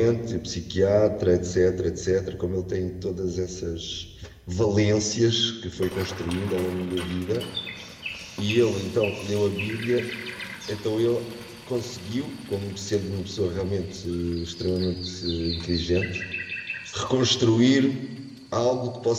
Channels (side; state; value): both; identical; correlation 1.00